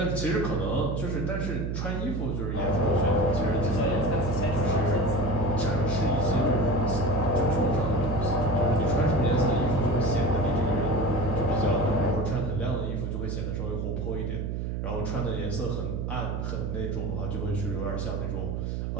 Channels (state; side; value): noise; right; hum, 2 dB below the sound